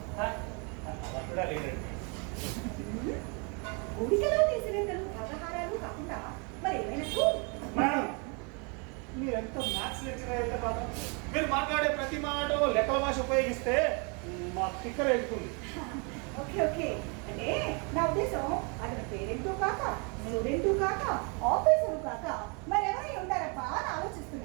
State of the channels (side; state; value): left; quieter; 34.0 dB